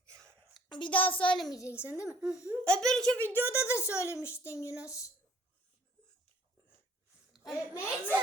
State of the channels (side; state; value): both; normal; correlation 0.58